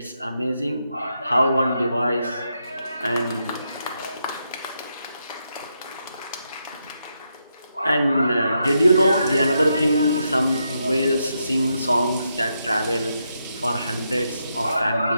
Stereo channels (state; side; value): inverted; both; correlation -0.82